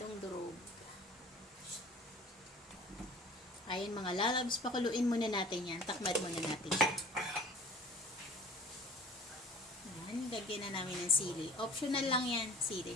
durog. Ayan mga lalabs, pakuluin muna natin yan. Takmad muna natin siya. Ayan, lagyan na namin ng sili. Optional lang yan, sili.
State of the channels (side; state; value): both; normal; correlation 0.46